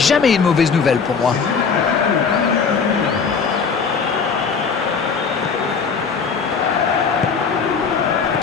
une mauvaise nouvelle pour moi.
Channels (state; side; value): quieter; right; 5.6 dB